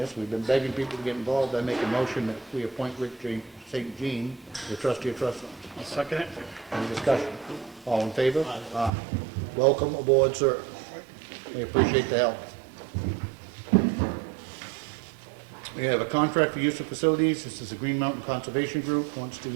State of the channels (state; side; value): drops out; left; at 8.9 s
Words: we've been begging people to get involved. I make a motion that we appoint Rick St. Jean, the trustee of trust funds. I'll second it. Any discussion? All in favor? Aye. Welcome aboard, sir. We appreciate the help. We have a contract for use of facilities. This is the Green Mountain Conservation Group, wants to